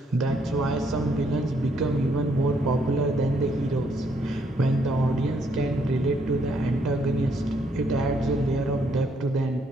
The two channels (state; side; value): normal; both; correlation 0.71